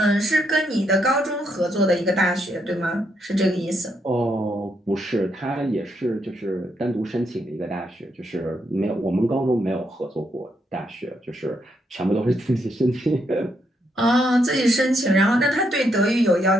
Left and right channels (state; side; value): normal; both; correlation 0.77